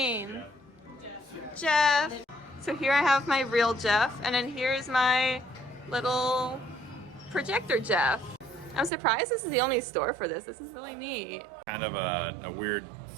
Jeff. So here I have my real Jeff, and then here's my little projector Jeff. I'm surprised this is the only store for this. This is really neat. Kind of a weird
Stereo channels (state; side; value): drops out; left; at 8.9 s